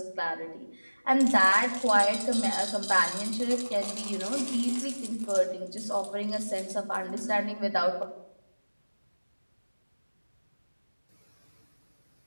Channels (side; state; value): both; inverted; correlation -1.00